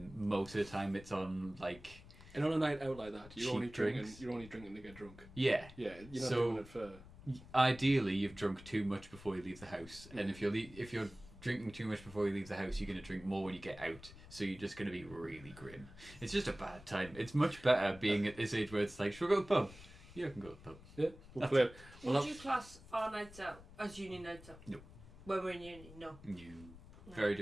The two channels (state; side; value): noise; left; rumble, 18 dB below the sound